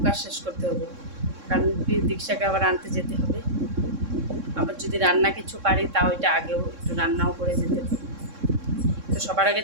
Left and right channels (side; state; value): left; late; 3.6 ms